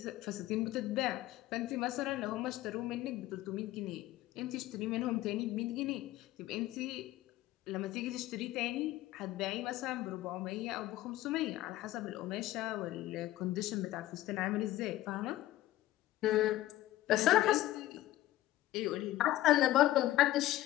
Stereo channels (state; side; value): quieter; right; 15.3 dB